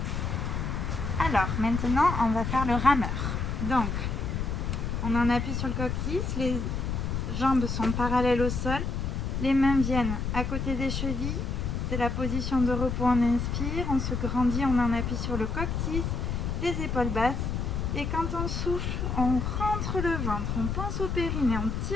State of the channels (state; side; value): noise; left; rumble, 2 dB below the sound